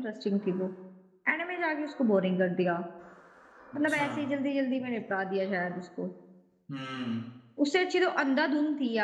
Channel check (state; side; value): identical; both; correlation 1.00